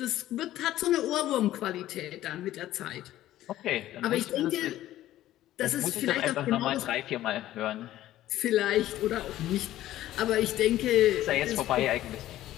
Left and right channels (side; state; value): right; quieter; 14.0 dB